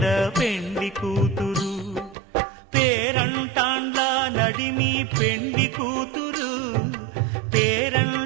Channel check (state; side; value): drops out; left; at 2.1 s